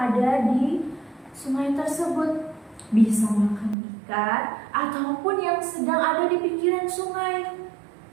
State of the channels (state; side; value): drops out; left; at 3.8 s